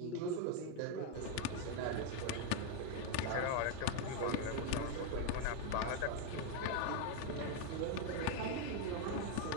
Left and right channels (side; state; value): both; different; correlation 0.01